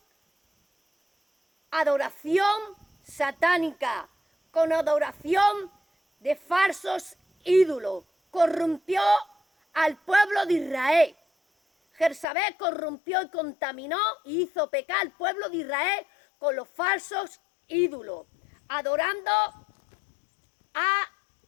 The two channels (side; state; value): right; drops out; at 12.2 s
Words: adoración satánica, con adoración de falsos ídolos. Corrompió al pueblo de Israel. Jezabel corrompió y contaminó y hizo pecar al pueblo de Israel con los falsos ídolos, adorando a